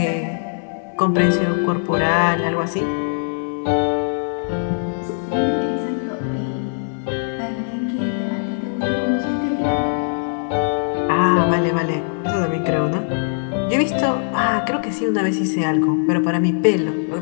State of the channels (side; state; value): right; silent; 65 dB below the other